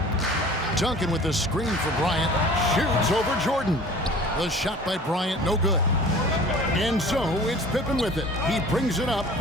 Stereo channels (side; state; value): both; normal; correlation 0.44